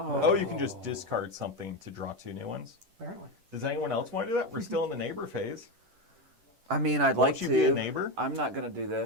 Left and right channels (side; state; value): left; late; 10 ms